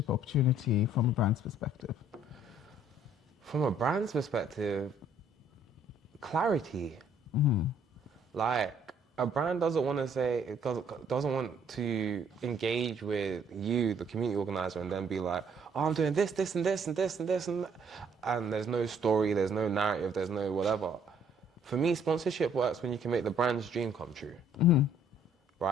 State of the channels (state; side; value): normal; both; correlation 0.62